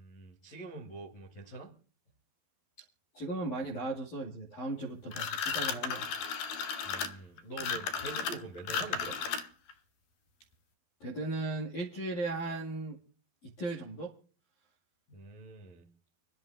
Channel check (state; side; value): late; right; 12 ms